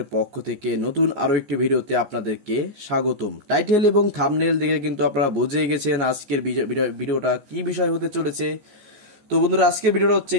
পক্ষ থেকে নতুন আরো একটি ভিডিওতে আপনাদেরকে স্বাগতম। টাইটেল এবং থাম্বনেল দেখে কিন্তু আপনারা বুঝে গেছেন আজকের ভিডিওটা কি বিষয় হতে চলেছে। তো বন্ধুরা, আজকের ভিডিওটা হচ্ছে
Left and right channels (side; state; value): left; late; 14 ms